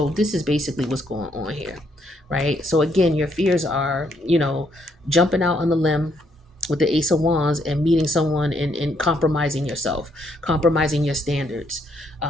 this is basically what's going on here, right? So again, your fears are, jumping out on the limb with the Ace of Wands and meeting someone and compromising yourself, compromising your standards.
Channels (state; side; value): normal; both; correlation 0.73